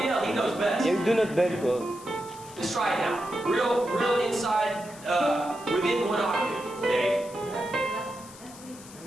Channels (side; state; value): left; noise; hiss, 19 dB below the sound